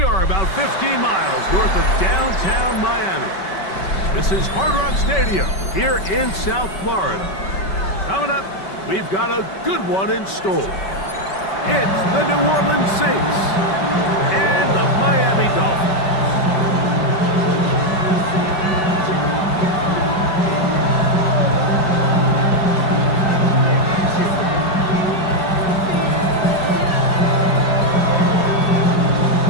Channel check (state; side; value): late; right; 5.2 ms